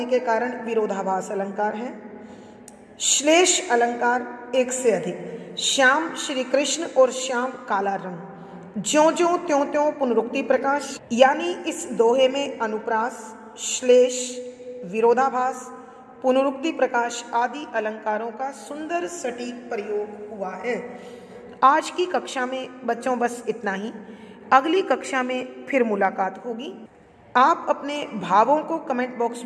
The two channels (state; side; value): identical; both; correlation 1.00